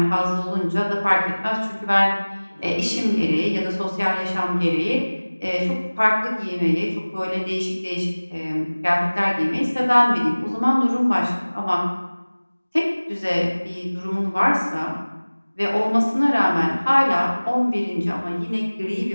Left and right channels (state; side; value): inverted; both; correlation -1.00